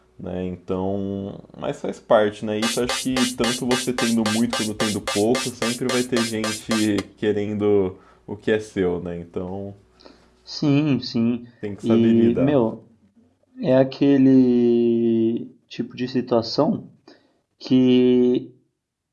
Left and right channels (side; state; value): both; identical; correlation 1.00